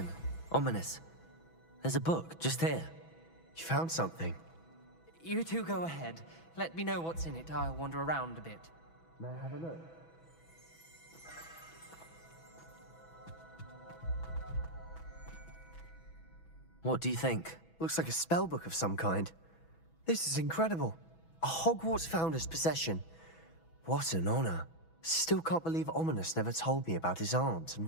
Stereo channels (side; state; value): right; late; 6.1 ms